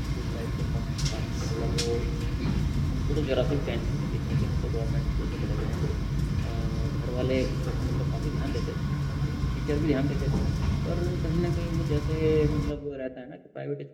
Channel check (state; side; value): identical; both; correlation 1.00